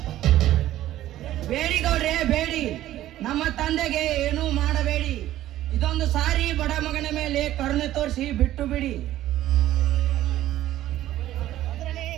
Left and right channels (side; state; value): left; quieter; 13.8 dB